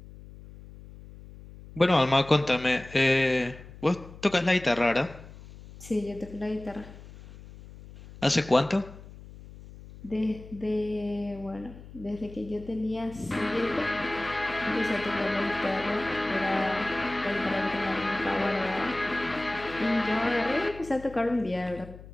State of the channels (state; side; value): noise; left; hum, 17 dB below the sound